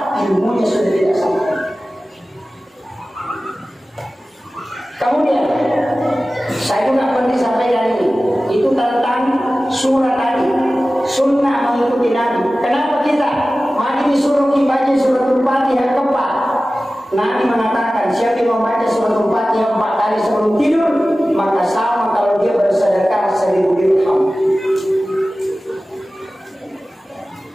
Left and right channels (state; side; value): normal; both; correlation 0.96